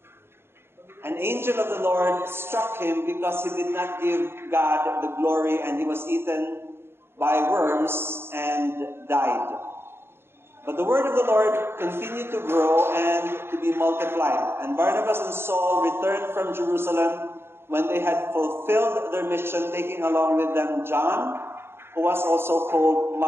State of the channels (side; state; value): left; late; 0.11 ms